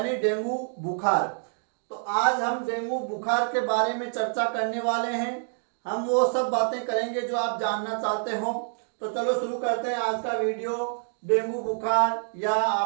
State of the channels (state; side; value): silent; left; digital silence